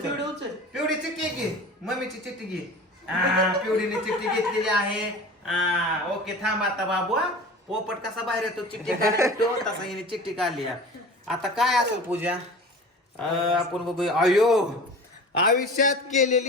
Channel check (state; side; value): normal; both; correlation 0.38